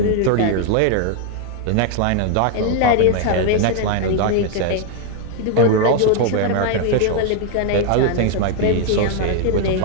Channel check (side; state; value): both; different; correlation 0.00